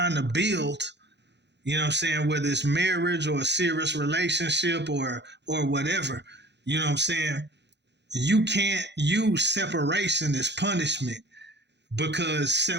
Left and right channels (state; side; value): late; left; 0.50 ms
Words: to build, you know what I'm saying, whether it's marriage or a serious relationship or whatever, you know what I'm saying? You can't use separation as punishment, because